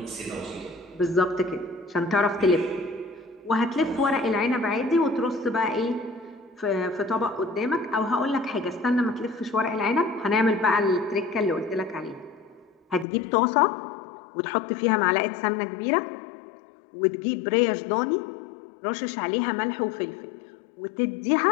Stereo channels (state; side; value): drops out; right; at 13.1 s